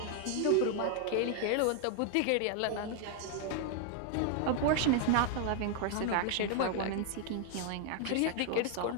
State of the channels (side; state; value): both; different; correlation 0.00